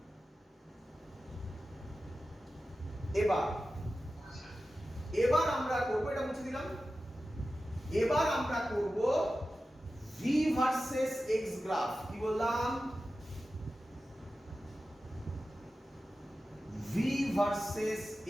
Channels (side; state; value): both; normal; correlation 0.94